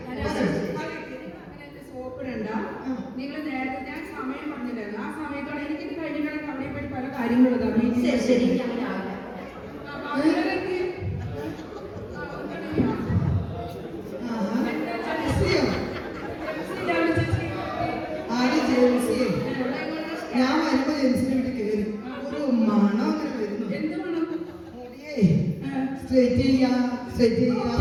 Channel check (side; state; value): both; identical; correlation 1.00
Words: സോപ്പിടണ്ട. നിങ്ങൾ നേരത്തെ ഞാൻ സമയം പറഞ്ഞില്ലായിരുന്നു. ആ സമയത്തോടെ എനിക്കിത് കഴിഞ്ഞിട്ടാണ് അവിടെ പോയി പല കാര്യങ്ങളും ശരി. ഞാൻ വരുമ്പോ ജെൻസിന്റെ വീട്ടിൽ കയറി ഒരു മണം അങ്ങനെ വരുന്നു. എന്ത് മണം? സ്ട്രൈറ്റ് ചെയ്യാ